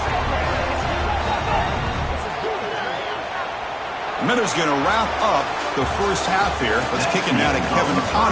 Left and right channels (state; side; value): identical; both; correlation 1.00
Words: Miller's going to wrap up the first half here. Let's kick it now to Kevin